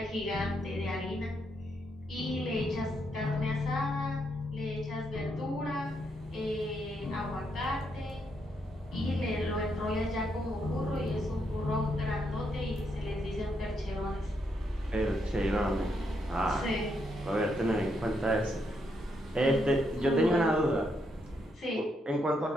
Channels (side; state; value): both; normal; correlation 0.78